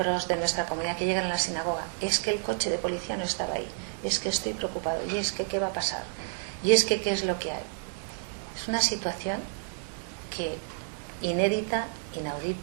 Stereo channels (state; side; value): silent; left; 58 dB below the other